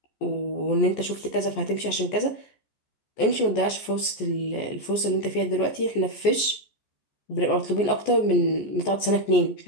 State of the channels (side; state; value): right; late; 14 ms